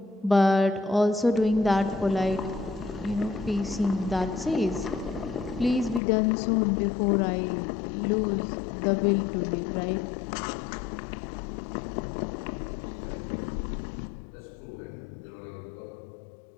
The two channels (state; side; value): drops out; right; at 6.0 s